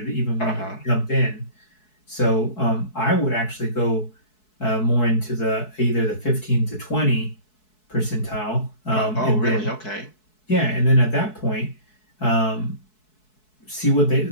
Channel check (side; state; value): right; late; 4.7 ms